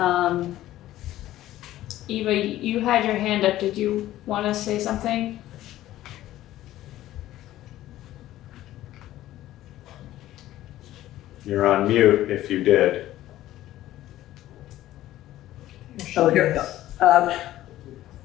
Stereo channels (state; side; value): quieter; right; 14.4 dB